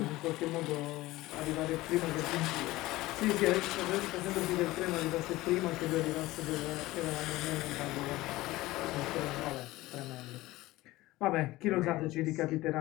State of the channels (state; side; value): quieter; right; 18.4 dB